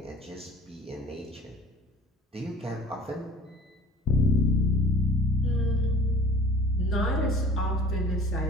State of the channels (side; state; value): both; normal; correlation 0.46